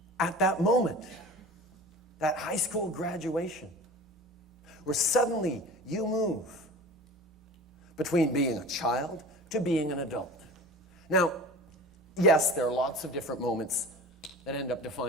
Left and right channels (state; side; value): normal; both; correlation 0.37